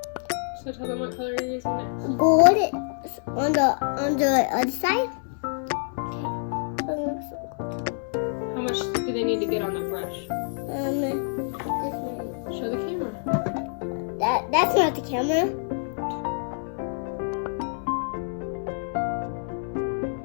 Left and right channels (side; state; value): right; silent; 60 dB below the other